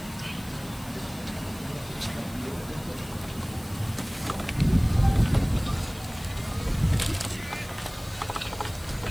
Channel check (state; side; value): noise; left; hiss, 19 dB below the sound